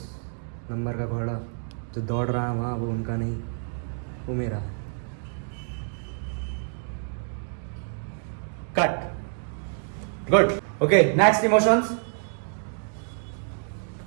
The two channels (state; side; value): silent; left; digital silence